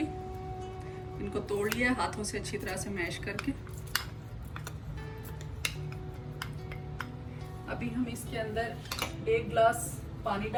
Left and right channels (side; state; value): both; identical; correlation 1.00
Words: इनको तोड़ लिया हाथों से अच्छी तरह से मैश करके। अभी हम इसके अंदर 1 गिलास पानी